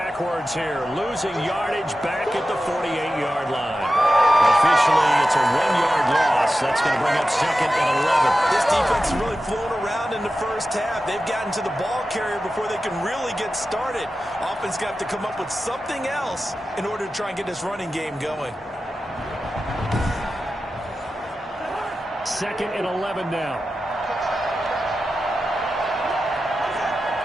here, losing yardage back at the 48-yard line. Officially, it's a 1-yard loss. That's going to bring up 2nd and 11. This defense is really flown around in the first half. They've gotten to the ball carrier before they can really get started. Offense got to come up with something else in order to try and get this running game going. 2nd and 11 now.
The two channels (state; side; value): normal; both; correlation 0.93